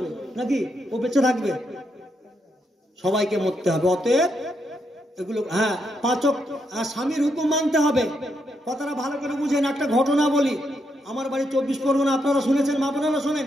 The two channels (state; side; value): normal; both; correlation 0.79